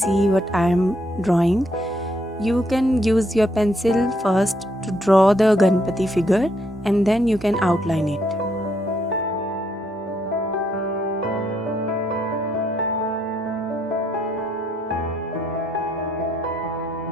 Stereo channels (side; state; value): both; normal; correlation 0.73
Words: what I am drawing. You can use your pencil first to draw the Ganpati figure and then you can outline it.